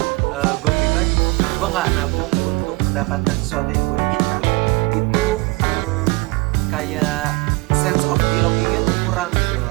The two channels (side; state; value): left; quieter; 25.6 dB